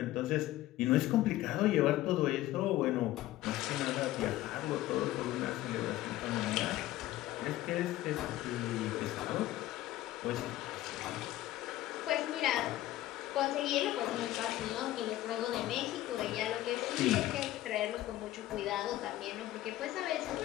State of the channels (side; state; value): right; quieter; 15.2 dB